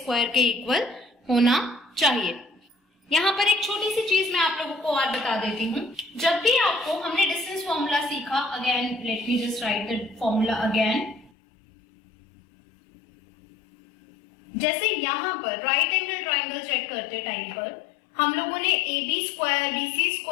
के इक्वल होना चाहिए। यहाँ पर एक छोटी सी चीज मैं आप लोगों को और बता देती हूँ। जब भी आपको, हमने डिस्टेंस फॉर्मूला सीखा, again let me just right the formula again. जैसे यहाँ पर राइट एंगल ट्राइंगल चेक करते टाइम पर हम लोगों ने AB स्क्वायर BC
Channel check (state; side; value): drops out; right; at 11.3 s